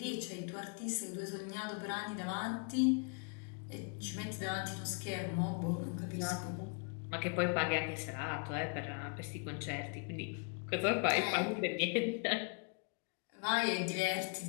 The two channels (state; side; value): quieter; right; 37.9 dB